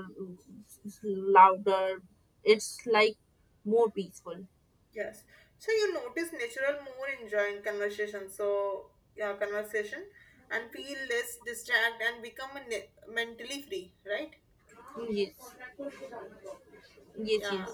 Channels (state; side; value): identical; both; correlation 1.00